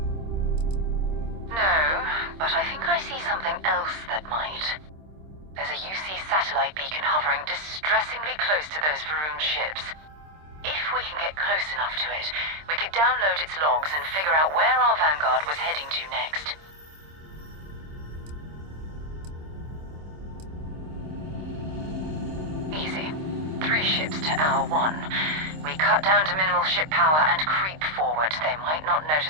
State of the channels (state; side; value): late; left; 26 ms